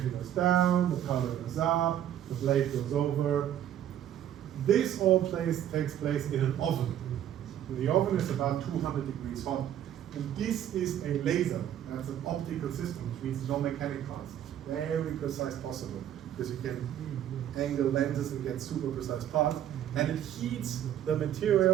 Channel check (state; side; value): quieter; left; 10.8 dB